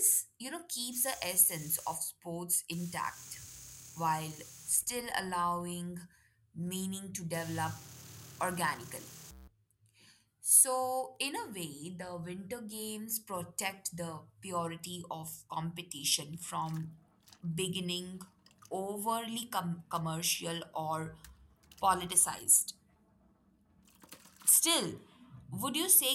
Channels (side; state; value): both; identical; correlation 1.00